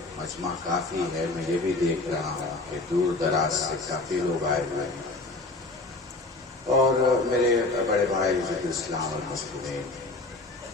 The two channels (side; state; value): right; quieter; 3.1 dB